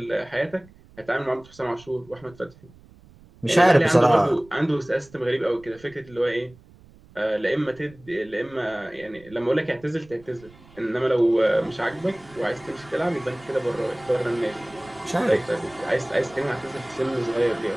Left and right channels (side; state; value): right; noise; rumble, 24 dB below the sound